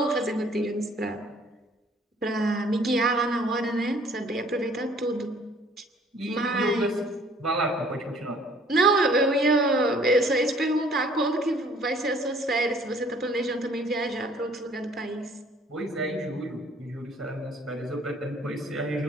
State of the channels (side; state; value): both; normal; correlation 0.57